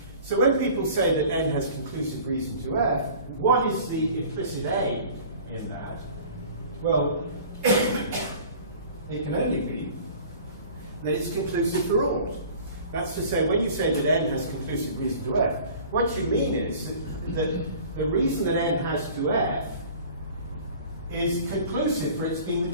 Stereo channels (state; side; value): inverted; both; correlation -0.45